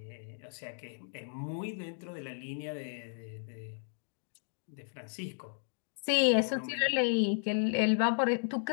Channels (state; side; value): silent; right; digital silence